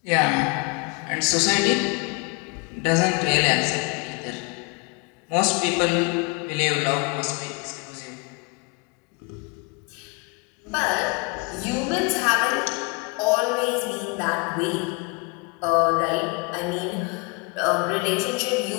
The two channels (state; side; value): quieter; right; 29.9 dB